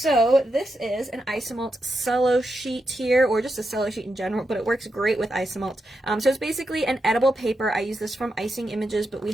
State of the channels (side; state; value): both; normal; correlation 0.86